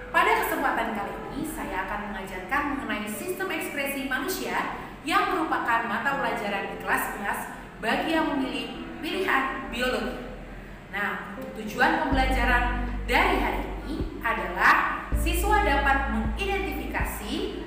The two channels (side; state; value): both; identical; correlation 1.00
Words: Pada kesempatan kali ini saya akan mengajarkan mengenai sistem ekspresi manusia yang merupakan mata pelajaran di kelas 11 bagi yang memilih pilihan biologi. Nah, untuk tujuan pembelajaran dari hari ini adalah siswa dapat mengidentifikasi